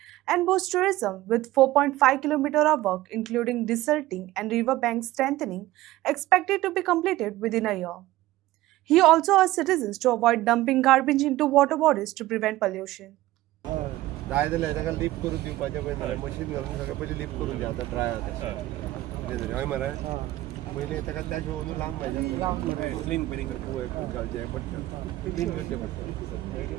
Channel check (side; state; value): left; quieter; 16.7 dB